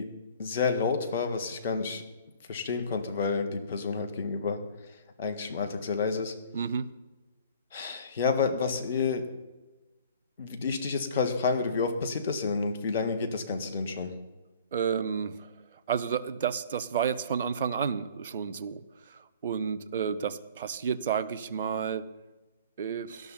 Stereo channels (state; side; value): inverted; both; correlation -0.49